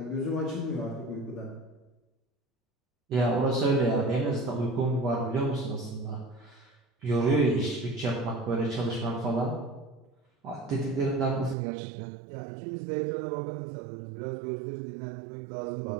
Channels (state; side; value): drops out; left; at 11.6 s